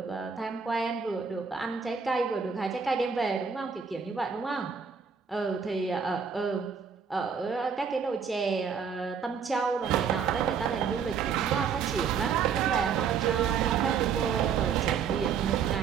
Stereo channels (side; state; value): left; quieter; 6.4 dB